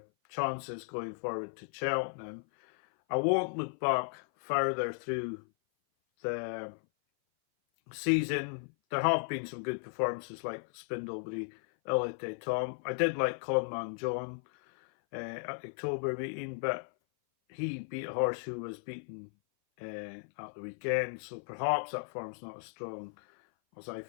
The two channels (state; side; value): silent; right; 54 dB below the other